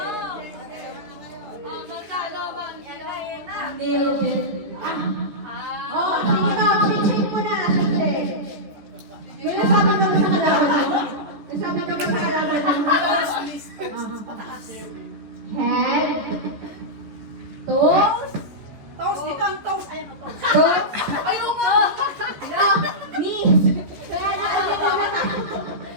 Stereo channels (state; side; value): late; left; 14 ms